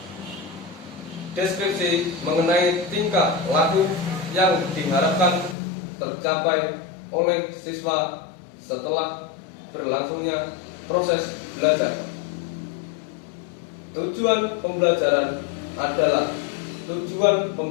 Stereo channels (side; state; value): right; drops out; at 5.6 s